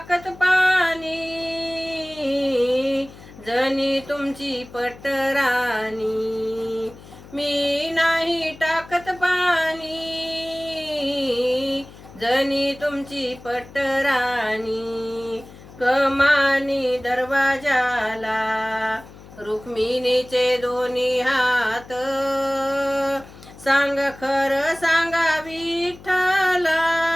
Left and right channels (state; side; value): noise; left; hum, 19 dB below the sound